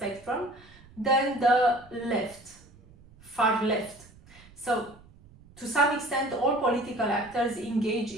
than the left, far left. So to some extent, all political actors engage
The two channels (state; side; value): noise; right; rumble, 24 dB below the sound